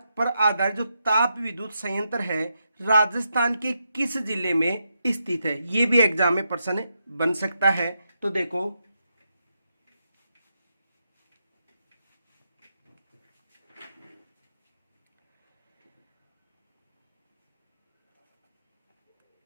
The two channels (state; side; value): inverted; both; correlation -0.82